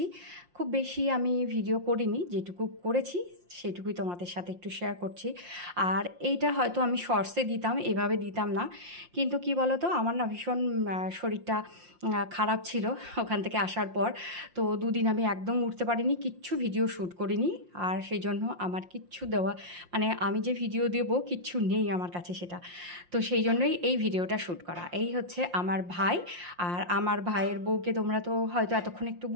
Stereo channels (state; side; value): late; left; 5.7 ms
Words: খুব বেশি আমি ভিডিও করিনি, যেটুকু করেছি সেটুকুই তোমাদের সাথে একটু শেয়ার করছি। আর এইটা হয়তো আমি শর্টসে দিতাম, এভাবে দিতাম না, কিন্তু কি বলো তো, আমার না ভীষণ শরীরটা খারাপ ছিল ওখান থেকে আসার পর। তো দুদিন আমি একদম উঠতে পারিনি, কিচ্ছু ভিডিও শ্যুট করিনি। আর সেই জন্য আমার কিচ্ছু দেওয়া, মানে আমি যে ভিডিও দেবো কিচ্ছু নেই আমার কাছে সেটা। তো সেই জন্যই এই ভিডিওটা শ্যুট করা। এই হচ্ছে আমার ভাই, আর আমার ভাইয়ের বউকে তোমরা তো হয়তো এতক্ষণ একটু